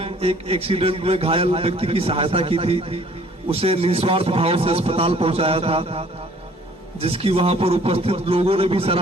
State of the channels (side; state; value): both; normal; correlation 0.56